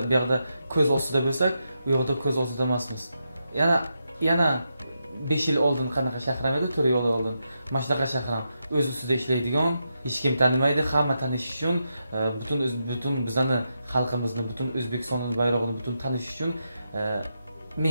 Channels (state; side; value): inverted; both; correlation -0.84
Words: bu yerda ko'z ostida bo'lsak, u yoqda ko'z ostida emasmiz. Yana 5 yil oldin qanaqa shahram edi, 4 yil oldin. Mana shunaqa shahram o'z ustida ishlaydigan, hech kim tanimaydi, hamma tanish uchun, butun bizani xalqimizni, butun O'zbekistonning bayrog'ini butun tanish uchun